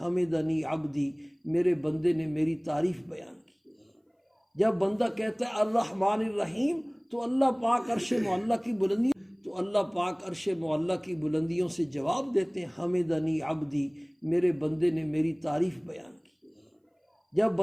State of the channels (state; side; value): identical; both; correlation 1.00